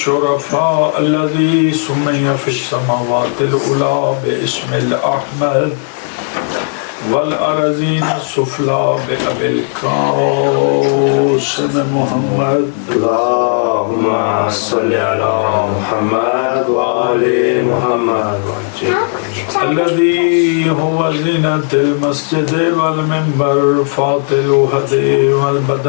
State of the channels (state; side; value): silent; right; 70 dB below the other